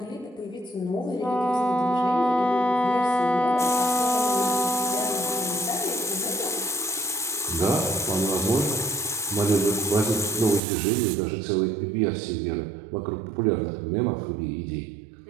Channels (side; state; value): left; drops out; at 10.6 s